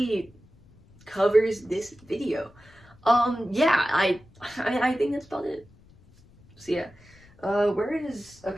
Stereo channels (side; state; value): left; noise; rumble, 27 dB below the sound